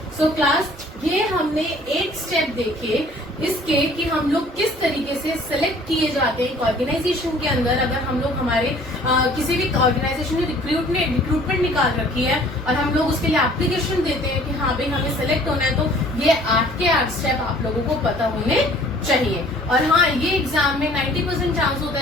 सो क्लास, ये हमने एक स्टेप देखे इसके कि हम लोग किस तरीके से सिलेक्ट किए जाते हैं एक ऑर्गेनाइजेशन के अंदर। अगर हम लोग हमारे किसी भी ऑर्गेनाइजेशन ने रिक्रूटमेंट निकाल रखी है और हम लोग उसके लिए एप्लीकेशन देते हैं कि हाँ भाई हमें सिलेक्ट होना है, तो ये 8 के 8 स्टेप आप लोगों को पता होने चाहिए। और हाँ, ये एग्जाम में 90% चांस होता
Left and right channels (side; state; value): both; normal; correlation 0.53